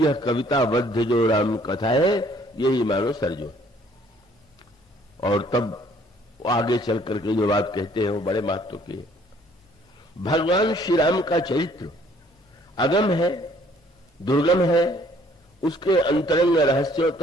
कविताबद्ध जो राम कथा है यही मानो सरजू। और तब आगे चल करके जो बात कहते हैं वो बड़े महत्व की है। भगवान श्री राम का चरित्र अगम है, दुर्गम है, उसके अंतरंग रहस्यों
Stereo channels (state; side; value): normal; both; correlation 0.60